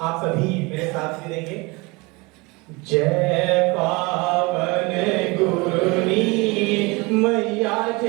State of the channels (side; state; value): left; quieter; 25.8 dB